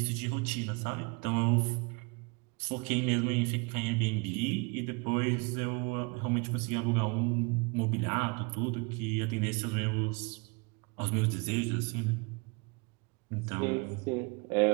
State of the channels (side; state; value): left; quieter; 30.2 dB